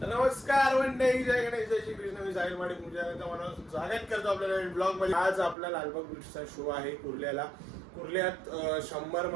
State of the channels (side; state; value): left; drops out; at 5.6 s